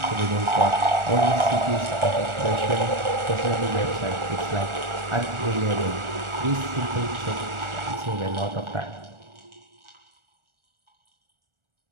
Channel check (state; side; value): late; left; 1.4 ms